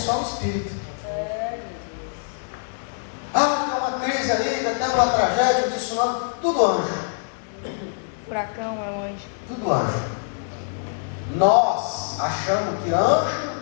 o espírito. Ah, tem uma crise aí, até uma tragédia, um tsunami, tudo anjo. Furacão é um anjo. Tudo anjo. Nós achamos que anjo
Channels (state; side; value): silent; right; 62 dB below the other